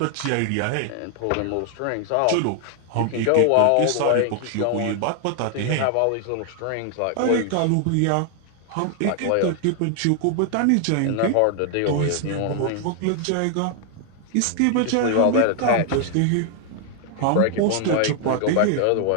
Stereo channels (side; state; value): both; different; correlation 0.00